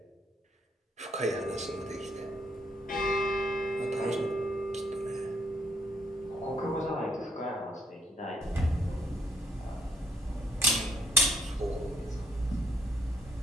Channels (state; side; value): normal; both; correlation 0.70